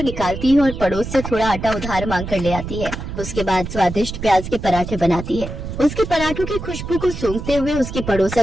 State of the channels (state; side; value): noise; right; rumble, 8 dB below the sound